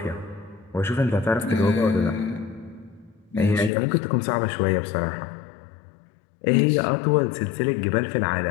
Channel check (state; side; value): drops out; right; at 3.7 s